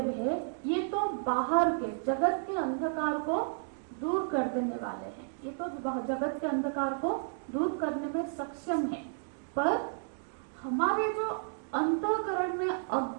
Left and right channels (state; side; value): silent; left; digital silence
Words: है, ये तो बाहर के जगत के अंधकार को दूर कर देने वाले हैं। ये तो जगत के अंधकार को दूर करने में सक्षम है, पर हमारे जो अंतःकरण में